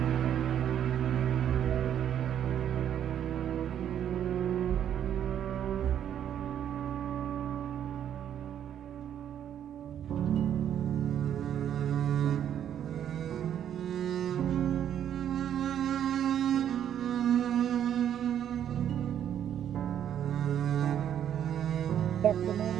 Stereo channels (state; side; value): quieter; left; 9.8 dB